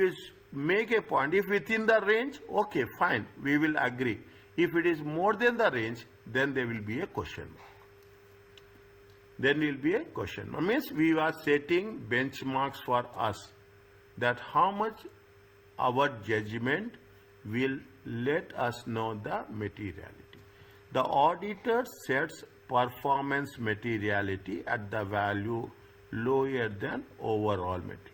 make a point, if within the range, okay, fine, we will agree. If it is more than the range, then there will be a question mark. Then will be a question mark. Means we are setting benchmarks for us, that how much our judgment will let us know the materiality. The auditor sets performance materiality at the value lower than overall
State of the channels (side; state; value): both; identical; correlation 1.00